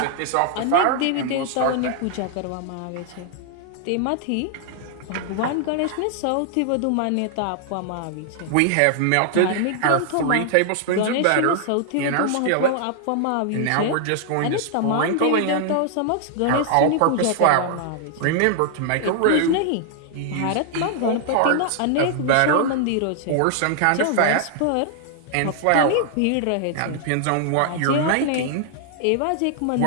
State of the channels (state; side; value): different; both; correlation 0.00